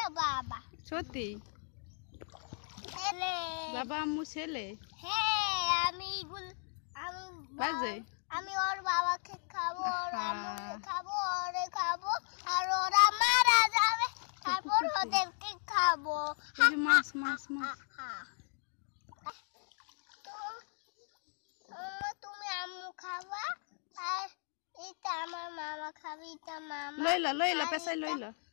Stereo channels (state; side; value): silent; right; 54 dB below the other